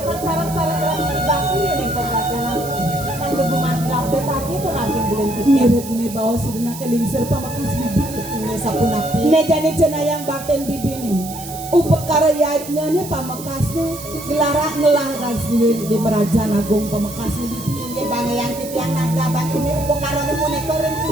sa sarang-sarang lang ni Bakit yan ay pagkakalang. Ang lubumantilaw sa tagi ito natin bilang ngirit ni bawa sudah nakalingsir pamakas bibi Ini sa punapi. ne jani cenayang baten bibi ni upakarayatnya ni pamakas ni gelara ngelaras di Merajan Agung pamakas ni bibi Hindi bangayang titiyang nagdabat. Ini upakaroon mo ni Korin.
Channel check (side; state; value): right; noise; hiss, 13 dB below the sound